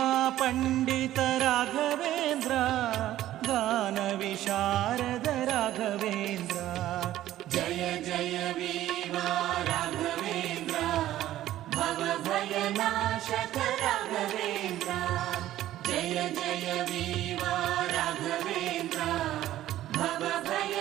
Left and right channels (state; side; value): quieter; left; 13.6 dB